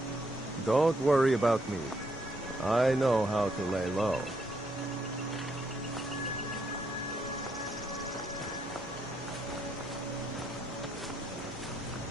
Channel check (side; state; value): both; normal; correlation 0.75